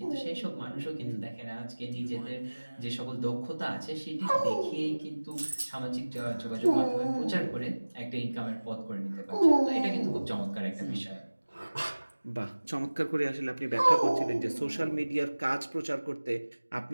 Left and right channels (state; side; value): inverted; both; correlation -1.00